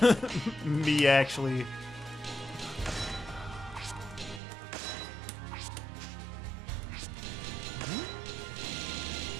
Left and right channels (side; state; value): left; drops out; at 4.4 s